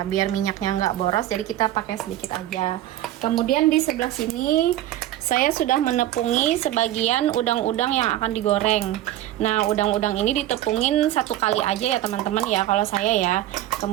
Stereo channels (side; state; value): left; quieter; 13.7 dB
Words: biar minyaknya nggak boros, jadi kita pakai sedikit aja. Kemudian di sebelah sini saya sudah menepungi sebagian udang-udang yang akan digoreng. Nah, udang-udang ini ditepungin satu kali aja ya teman-teman ya, kalau saya ya.